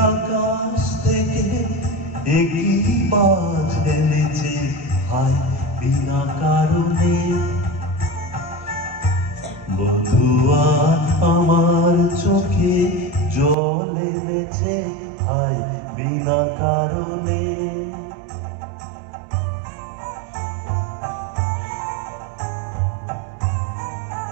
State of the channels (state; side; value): drops out; left; at 13.6 s